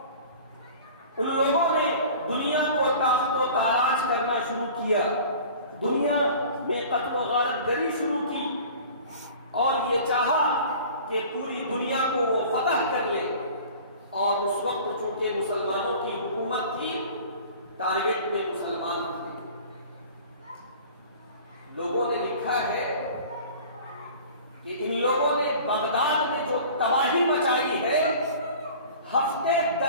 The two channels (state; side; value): inverted; both; correlation -0.43